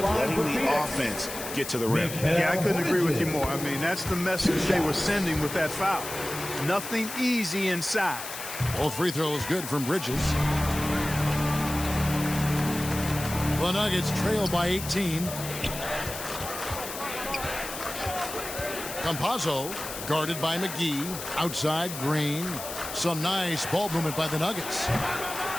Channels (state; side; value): noise; left; hiss, 9 dB below the sound